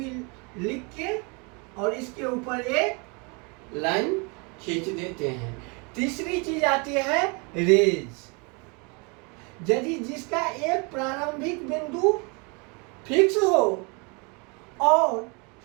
लिख के और इसके ऊपर एक लाइन खींच देते हैं। तीसरी चीज आती है रेज। यदि जिसका एक प्रारंभिक बिंदु फिक्स हो और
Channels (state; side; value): quieter; left; 31.7 dB